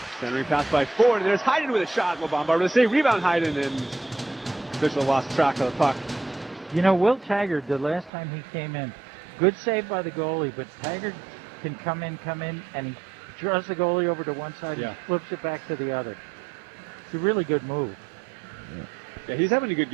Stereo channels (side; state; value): left; drops out; at 8.1 s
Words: Centering pass by Ford, and there's Hayden with a shot. LeBombard with a save, rebound Hayden, and official lost track of the puck. You know, Will Taggart, the last time he came in, good save by the goalie, but Taggart can come in, and he draws the goalie over to one side and flips it back to the other. It's a really good move. Yeah, he's having a good